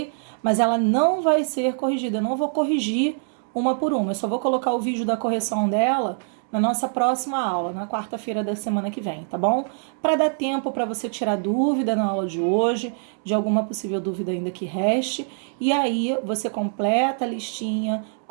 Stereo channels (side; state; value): left; silent; 61 dB below the other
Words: Mas ela não vai ser corrigida, eu não vou corrigir uma por uma, eu só vou colocar o vídeo da correção dela na nossa próxima aula, na quarta-feira da semana que vem, tá bom? Para dar tempo para você tirar dúvida na aula de hoje, de alguma possível dúvida ainda que reste, e aí você completa a listinha